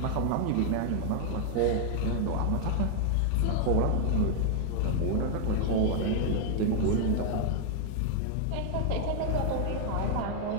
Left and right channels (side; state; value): both; different; correlation 0.00